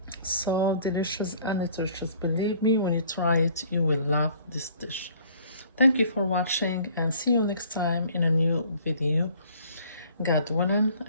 So delicious and nutritious. Believe me, when you try it, you will love this dish. Thank you for watching and see you next time in a new video. God willing,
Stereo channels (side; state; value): both; inverted; correlation -0.55